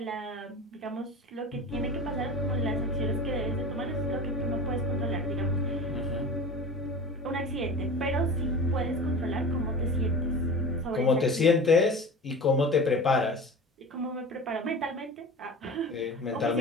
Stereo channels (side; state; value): both; normal; correlation 0.34